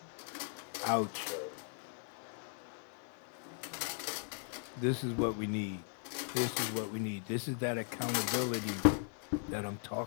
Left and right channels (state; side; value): silent; right; digital silence